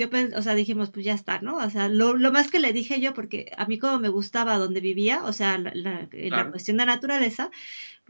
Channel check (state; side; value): inverted; both; correlation -1.00